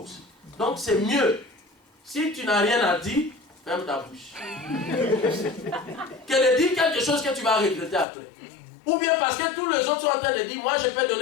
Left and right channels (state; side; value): drops out; right; at 8.1 s